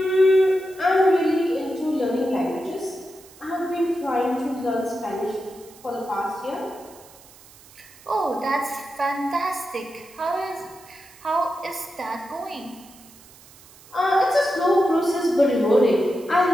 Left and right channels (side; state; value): right; noise; hiss, 23 dB below the sound